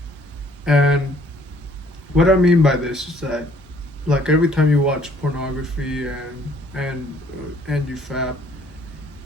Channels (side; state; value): both; normal; correlation 0.61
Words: and what I mean by this is that, like every time you watch pornography and you fap,